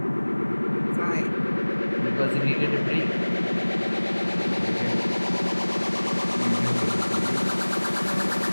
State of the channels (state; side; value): inverted; both; correlation -1.00